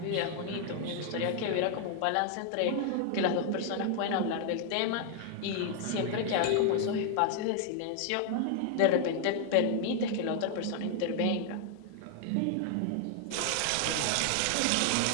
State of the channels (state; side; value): different; both; correlation 0.00